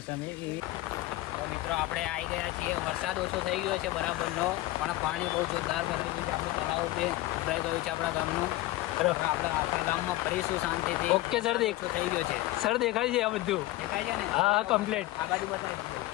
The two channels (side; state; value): right; quieter; 17.5 dB